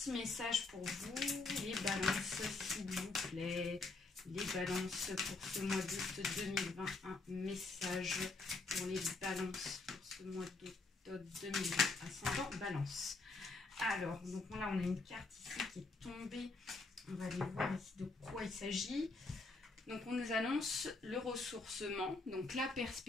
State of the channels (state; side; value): quieter; right; 3.6 dB